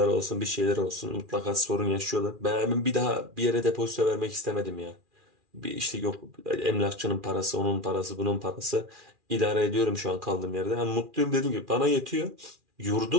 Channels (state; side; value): late; left; 2.4 ms